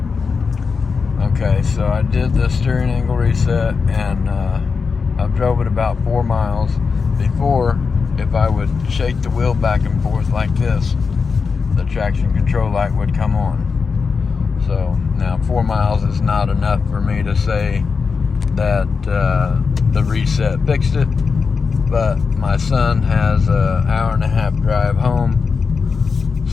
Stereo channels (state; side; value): quieter; right; 5.2 dB